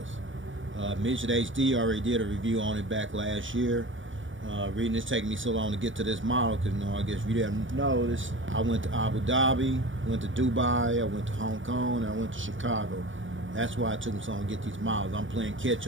Midget HD already did a review on it back last year. Reading this taking me so long to get to this model because I guess if you didn't know this, I went to Abu Dhabi, went to Dubai, I went to Hong Kong, and I went to Chicago. That's why it took me so long to get these models. I'm playing catch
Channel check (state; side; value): late; left; 0.56 ms